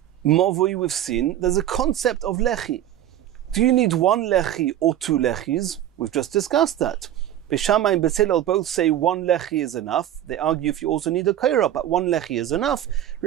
mavoi we've seen, there's a concept of lechi. Do you need 1 lechi or 2 lechis? We've just discussed that. Beis Shammai and Beis Hillel both say 1 lechi is enough. They argue if you also need a koira, but 1 lechi is enough.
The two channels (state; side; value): quieter; left; 11.9 dB